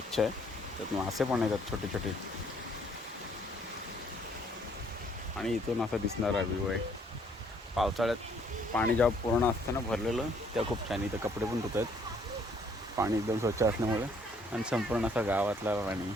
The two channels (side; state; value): both; normal; correlation 0.64